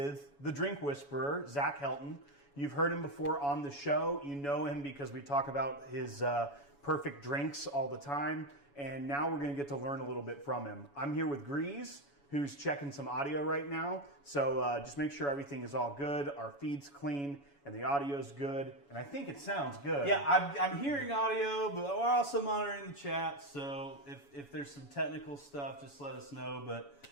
the Drink Whisperer, Zach Helton. You've heard him before on the show. You know him because we talk about his perfect drinks all the time. And now we're going to get to learn a little bit from him. I'm here with Grease, who's checking some audio right now. So just make sure everything is all good. Our feed's clean and the audio's good. And I think it sounds good. Yeah, I'm hearing audio, but we're also monitoring the chat. So if there's some technical stuff, just let us know. But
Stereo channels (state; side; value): late; right; 7.1 ms